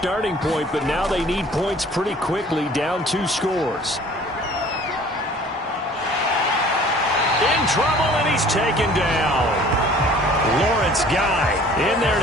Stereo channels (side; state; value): both; normal; correlation 0.51